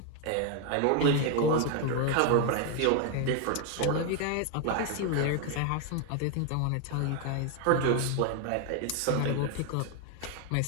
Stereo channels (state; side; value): different; both; correlation 0.01